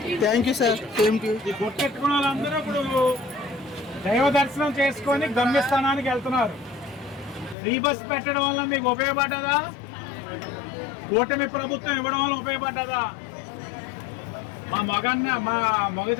Thank you sir. ఈ గుర్తెట్టుకున్న వాళ్ళందరూ ఇప్పుడు దైవ దర్శనం చేసుకొని గమ్యస్థానానికి వెళ్తున్నారు. ఫ్రీ బస్ పెట్టడం వల్ల మీకు ఉపయోగపడ్డదా? కూటమి ప్రభుత్వం ఇవ్వడం వల్ల ఉపయోగపడ్డదా? మా మగ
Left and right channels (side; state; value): right; drops out; at 7.6 s